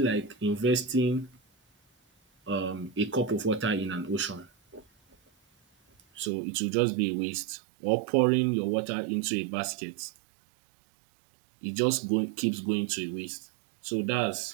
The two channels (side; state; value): left; drops out; at 6.3 s